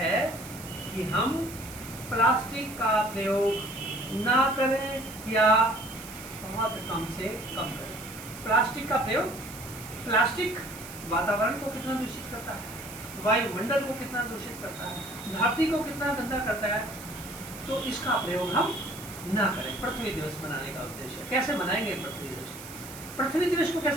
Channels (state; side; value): noise; right; hiss, 14 dB below the sound